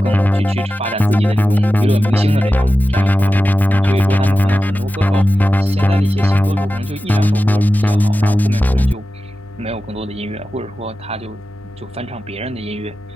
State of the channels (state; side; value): normal; both; correlation 0.94